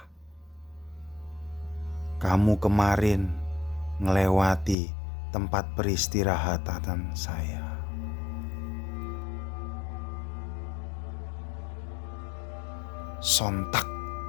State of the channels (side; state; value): right; drops out; at 4.8 s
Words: Kamu kemarin ngelewati tempat peristirahatan saya. Sontak